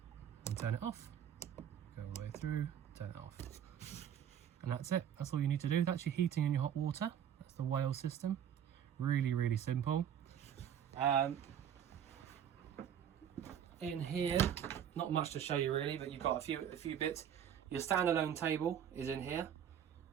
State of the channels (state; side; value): quieter; left; 9.2 dB